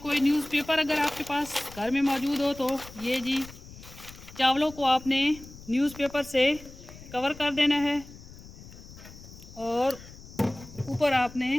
न्यूज़पेपर अगर आपके पास घर में मौजूद हो तो ये जी चावलों को आपने न्यूज़पेपर से कवर कर देना है और ऊपर आपने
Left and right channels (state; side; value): noise; left; rumble, 17 dB below the sound